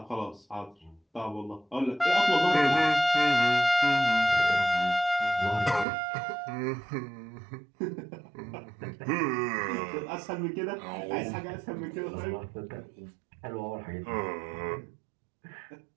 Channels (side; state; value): left; drops out; at 5.9 s